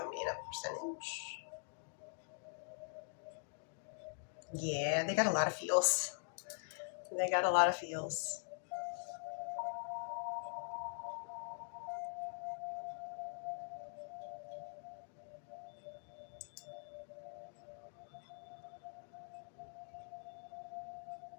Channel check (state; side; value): silent; right; digital silence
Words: me in a percentage? Yeah, they got a lot of feels. They got a lot of feels.